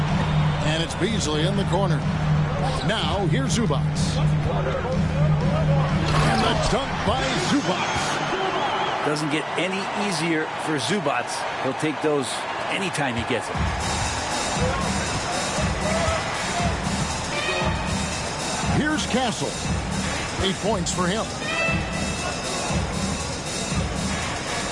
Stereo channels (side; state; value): both; identical; correlation 1.00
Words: And it's Beasley in the corner. Now here's Zubac. And the dunk by Zubac. Doesn't get any easier for Zubac. He'll take those anytime he gets it. Here's Castle. 8 points for him.